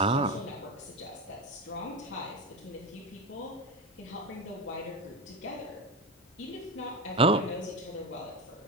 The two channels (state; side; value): normal; both; correlation 0.20